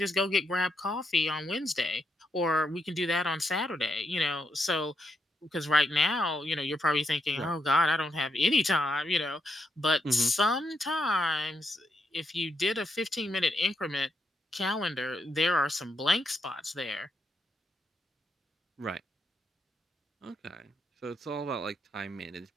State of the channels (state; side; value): normal; both; correlation 0.80